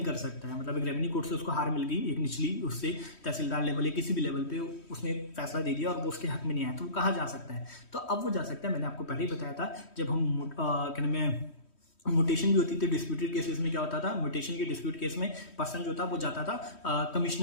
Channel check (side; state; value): right; late; 3.1 ms